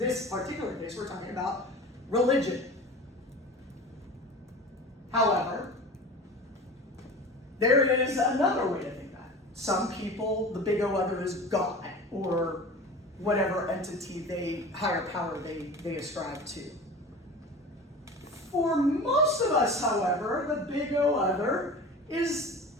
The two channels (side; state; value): both; normal; correlation 0.36